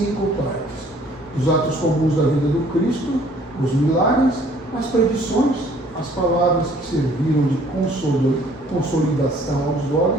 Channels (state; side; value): normal; both; correlation 0.57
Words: partes. Os atos comuns da vida do Cristo, os milagres, as predições, as palavras que serviram de consolidação aos